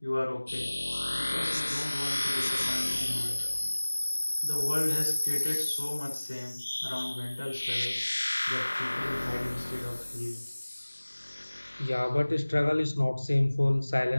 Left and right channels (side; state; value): both; inverted; correlation -1.00